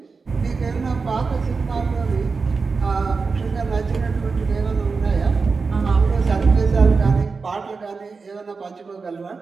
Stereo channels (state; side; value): quieter; left; 4.6 dB